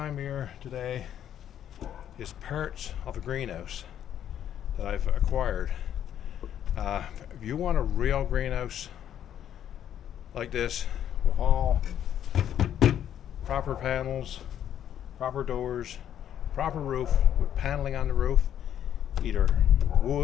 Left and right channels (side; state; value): right; quieter; 10.2 dB